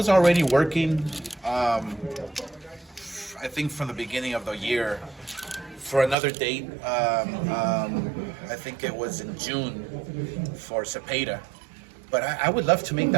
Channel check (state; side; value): drops out; left; at 6.2 s